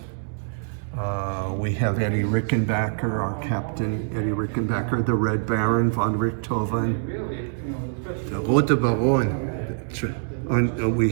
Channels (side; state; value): left; silent; digital silence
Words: we have Eddie Rickenbacker, our captain, Eddie Rickenbacker, the Red Baron, von Richthofen. The Rote Baron. We